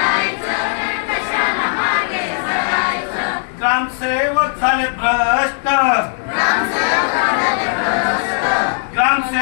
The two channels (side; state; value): right; silent; digital silence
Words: ग्रामसेवक झाले भ्रष्ट,